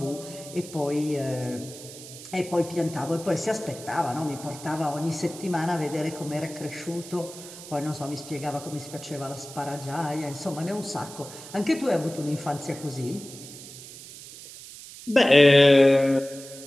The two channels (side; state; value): right; noise; hiss, 15 dB below the sound